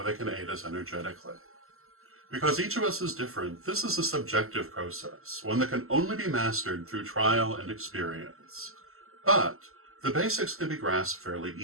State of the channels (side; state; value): left; late; 0.62 ms